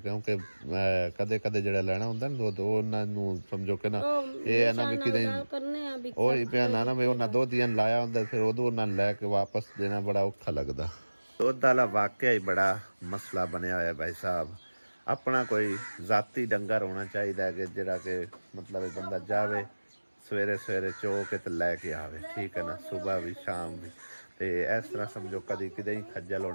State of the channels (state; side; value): inverted; both; correlation -1.00